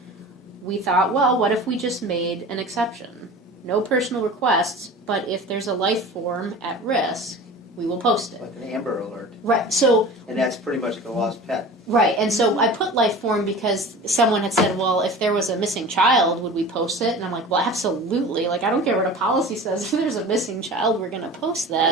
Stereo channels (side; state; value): both; normal; correlation 0.37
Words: we thought, well, what if we just made an exception? No personal requests, but if there's a life form at risk, we will post it. Like an Amber Alert. Right. So And that's pretty much like a lost pet. right, and so I put life form because someone had said, well, if there was a missing child, would we post it? And I'm like, well, absolutely. I don't care what a policy says. If there's a missing child, we're going to post